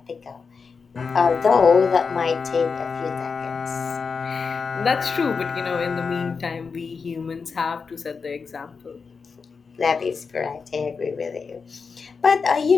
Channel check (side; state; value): right; quieter; 5.2 dB